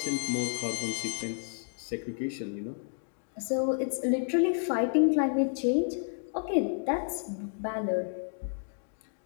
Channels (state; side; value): silent; right; digital silence